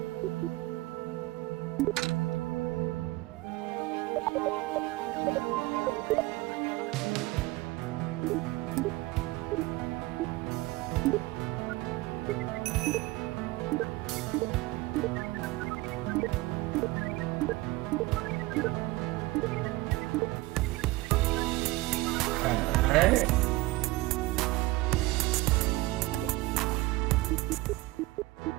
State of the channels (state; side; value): quieter; left; 20.0 dB